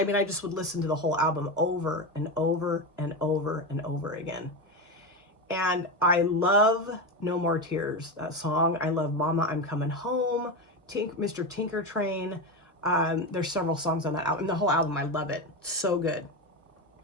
mean, I just would listen to the whole album over and over and over and over again. And I love No More Tears, that song. I love Mama, I'm Coming Home, Mr. Tinker Train. There's several songs on that album. The whole album, I love it. So good.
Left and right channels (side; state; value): both; normal; correlation 0.17